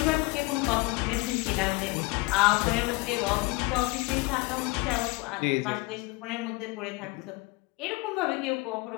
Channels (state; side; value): quieter; right; 24.1 dB